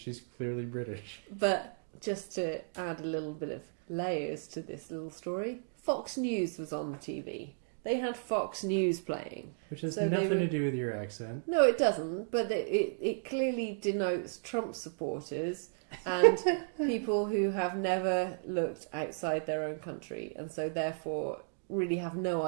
clearly British. But just to add a little bit of layers to this little story, Fox News was on the TV. They had Fox News playing. Which has nothing to do with your accent. No, it doesn't. But it clearly denotes Trump supporters and people who have never looked outside their own country and so therefore really have no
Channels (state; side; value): silent; left; digital silence